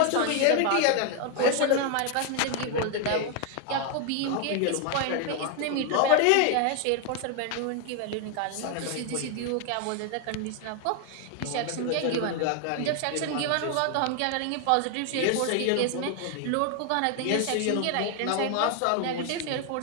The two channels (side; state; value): both; different; correlation 0.01